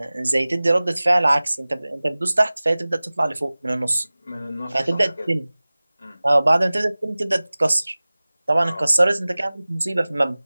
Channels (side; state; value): both; inverted; correlation -0.99